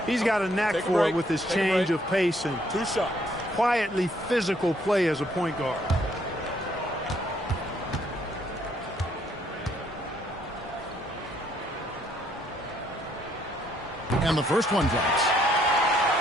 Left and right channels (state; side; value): normal; both; correlation 0.68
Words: He's got a knack for it with his change of pace and quietly physical play as a point guard. And the first one drops.